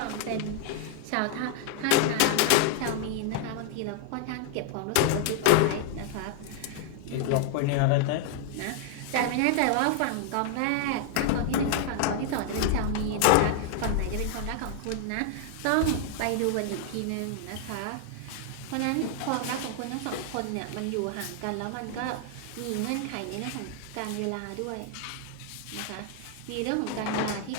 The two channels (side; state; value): both; different; correlation 0.00